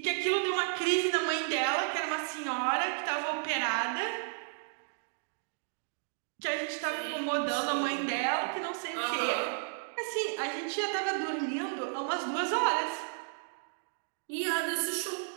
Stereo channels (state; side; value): silent; left; digital silence